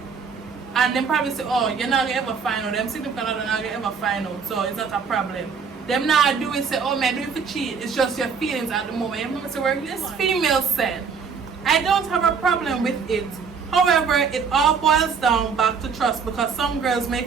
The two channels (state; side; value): quieter; left; 5.9 dB